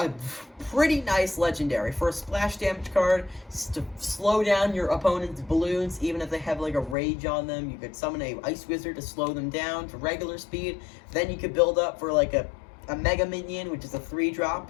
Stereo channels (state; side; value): drops out; right; at 7.0 s